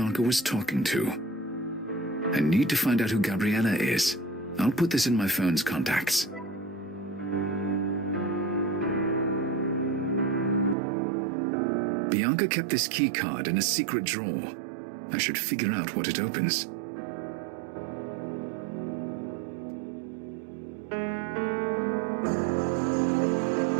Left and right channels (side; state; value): left; drops out; at 10.8 s